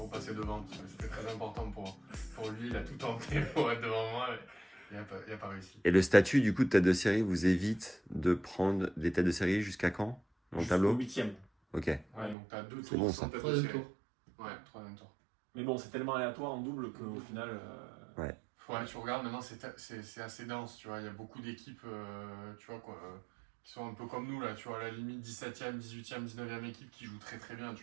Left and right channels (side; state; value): left; drops out; at 12.4 s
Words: devant parce que c'était très important pour lui. Il a tout tenté pour être devant moi. Mais il a pas réussi. Et le statut du coup de tête de série vous évite de prendre des têtes de série jusqu'à quand? Dans le tableau? 8e. Ok. Ouais, donc t'as 2 C'est tours bon, sans ça. tête de Troisième série. tour. Ouais, troisième tour. Mais bon, c'est tellement aléatoire en double qu'au final. Ouais. Ouais, tu regardes maintenant, c'est assez dense, tu vois. Il y a beaucoup d'équipes, tu vois, quoi, qui sont un peu comme nous, là, tu vois, à la limite 17e, 18e, 19e équipe qui jouent très très bien, tu